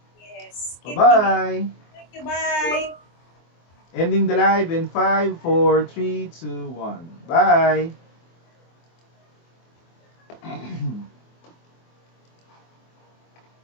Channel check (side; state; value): right; late; 24 ms